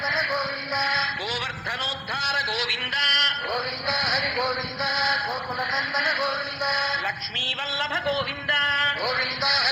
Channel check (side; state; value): both; identical; correlation 1.00